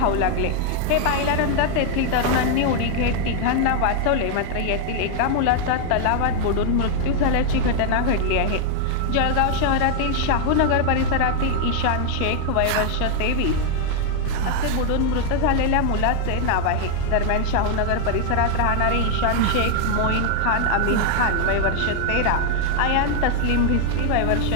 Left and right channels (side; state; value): both; different; correlation 0.00